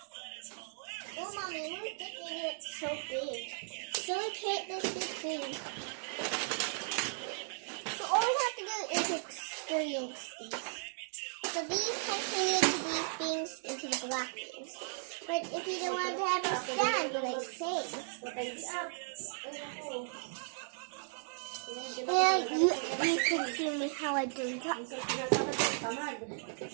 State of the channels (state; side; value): silent; left; digital silence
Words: Oh, mommy, we're making it so big. So we create this big thing. So all we have to do is experience these. So these can turn into these things, into the black things. But if you don't want to have a stand, like say, yeah, you can see me how I do that.